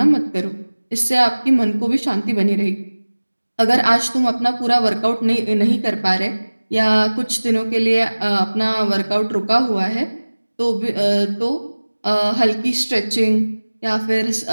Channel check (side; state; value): both; inverted; correlation -1.00